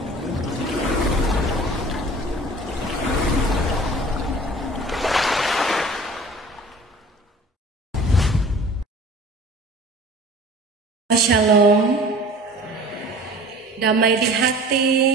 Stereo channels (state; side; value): normal; both; correlation 0.44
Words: Shalom, damai di hati,